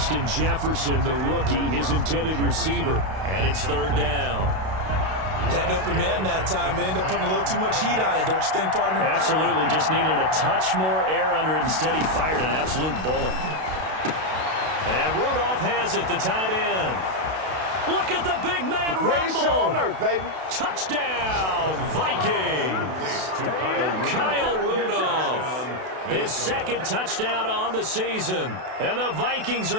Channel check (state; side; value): late; left; 32 ms